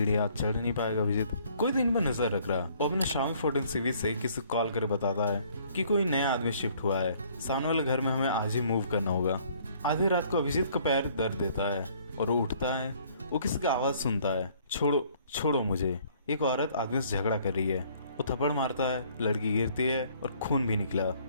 चढ़ नहीं पाएगा अभिजीत। कोई दिन में नजर रख रहा और अपने शामी 14 सीवी से किसी कॉल कर बताता है कि कोई नया आदमी शिफ्ट हुआ है, सामने वाले घर में हमें आज ही मूव करना होगा। आधी रात को अभिजीत का पैर दर्द देता है और वो उठता है। वो किसी की आवाज सुनता है, छोड़ो छोड़ो मुझे। एक औरत आदमी से झगड़ा कर रही है। वो थप्पड़ मारता है, लड़की गिरती है और खून भी निकला।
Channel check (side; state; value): both; inverted; correlation -0.60